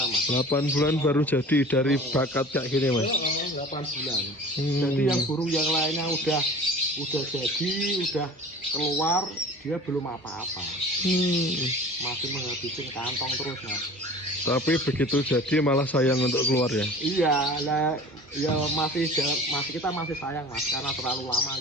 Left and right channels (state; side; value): normal; both; correlation 0.41